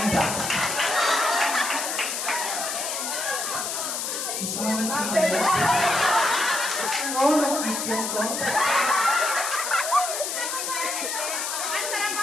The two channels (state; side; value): noise; left; hiss, 3 dB below the sound